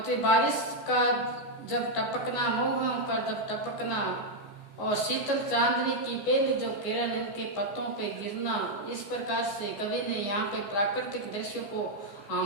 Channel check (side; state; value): right; late; 14 ms